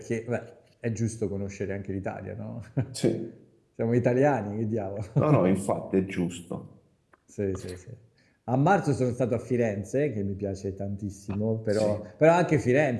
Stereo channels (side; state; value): both; identical; correlation 1.00